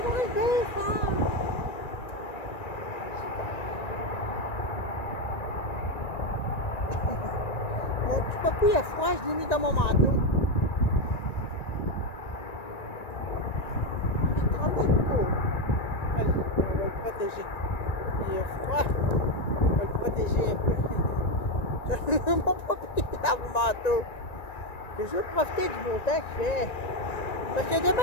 va se défendre. Mon petit papy a froid, je l'ai mis dans mon manteau. Il tremble beaucoup. Allez, on va le protéger. Il est froid, on va le protéger un peu. Mon papy est dans mon manteau. Je veux profiter du beau temps qu'il fait. Parce que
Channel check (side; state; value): right; late; 1.9 ms